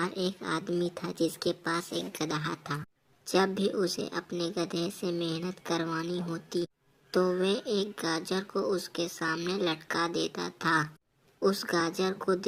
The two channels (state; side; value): identical; both; correlation 1.00